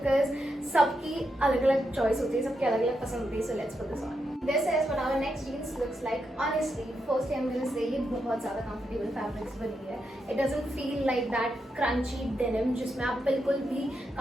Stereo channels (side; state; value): both; normal; correlation 0.83